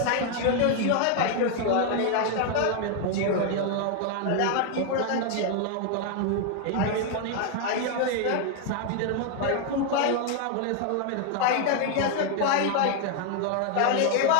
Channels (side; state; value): both; different; correlation 0.00